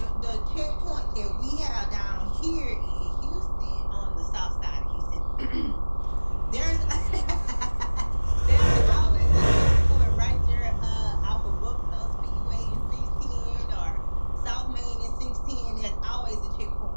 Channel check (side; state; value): both; inverted; correlation -1.00